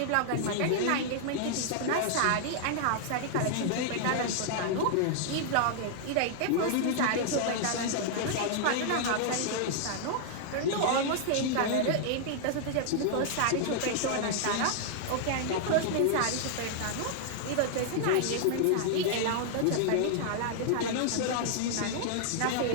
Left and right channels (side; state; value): both; different; correlation -0.01